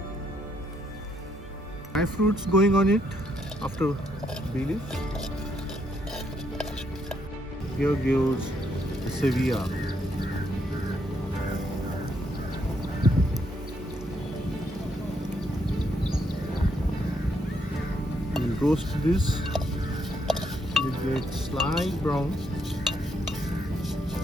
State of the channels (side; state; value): both; normal; correlation 0.74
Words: Dry fruits going on it after bay leaf. Here goes the Sevilla. We'll roast this. It gets slight brown.